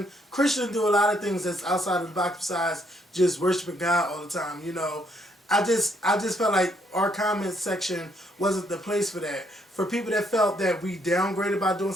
Christians do a lot of things that's outside of the box besides just worshiping God all the time. You know, I just felt like our comment section wasn't the place for that. For people that felt that we downgraded by doing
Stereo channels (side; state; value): both; normal; correlation 0.71